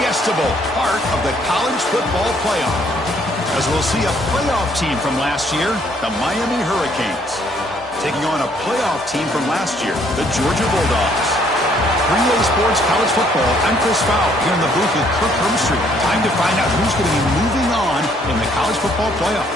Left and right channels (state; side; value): normal; both; correlation 0.65